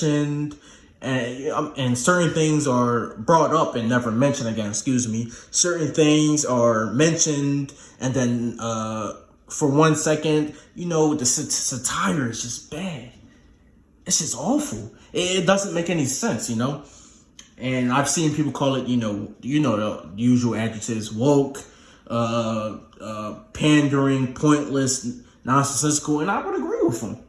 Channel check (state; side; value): identical; both; correlation 1.00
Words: and certain things are brought up and never mentioned again. Certain things are mentioned, and then for 1 second, the satire is just bad. It's just awful. It doesn't make any sense, And I've seen people call it, the usual adjectives: woke, pandering, pointless, nonsensical, and I would agree with them.